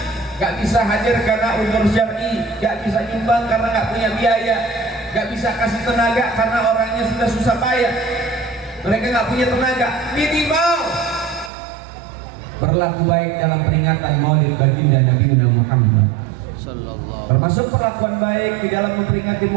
gak bisa hadir karena udzur syar'i, gak bisa nyumbang karena gak punya biaya, gak bisa kasih tenaga karena orangnya sudah susah payah, mereka gak punya tenaga. Minimal berlaku baik dalam peringatan Maulid baginda Nabi Muhammad. Termasuk perlakuan baik di dalam memperingati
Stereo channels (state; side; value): drops out; left; at 11.5 s